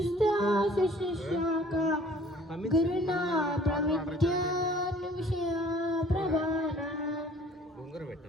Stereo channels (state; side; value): normal; both; correlation 0.53